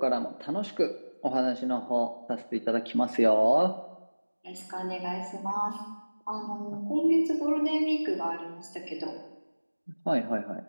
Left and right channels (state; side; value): inverted; both; correlation -1.00